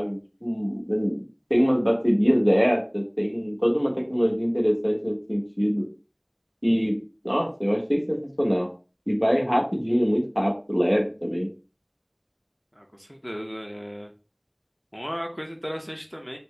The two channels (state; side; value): identical; both; correlation 1.00